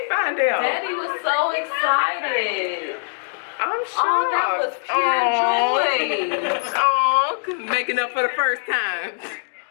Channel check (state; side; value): silent; right; digital silence